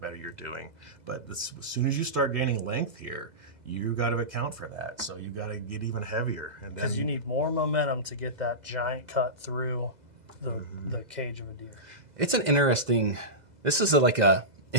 you're doing. But as soon as you start gaining length here, you got to account for that. So you got to get even heavier. Because you need more momentum to get that giant cut through the cage of a deer. It's an interesting. This is like a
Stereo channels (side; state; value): left; late; 2.0 ms